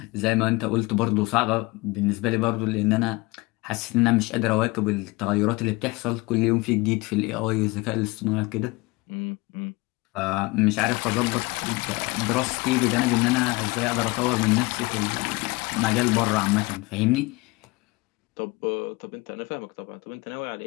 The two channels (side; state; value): right; quieter; 23.5 dB